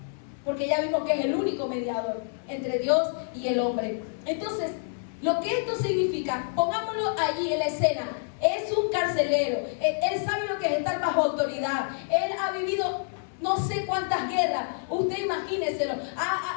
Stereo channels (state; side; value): silent; right; digital silence